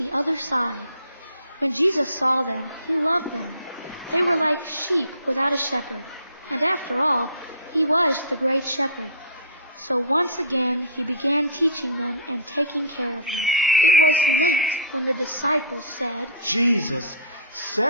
other side. When Jesus saw them, he loved them. They were like sheep without a shepherd, and after all, he was the great shepherd. So once again he began teaching them and taking care of them. It was late when the disciples said, "Jesus,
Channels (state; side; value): inverted; both; correlation -0.40